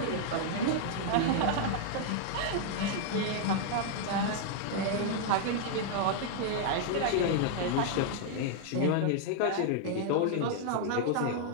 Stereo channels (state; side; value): different; both; correlation 0.00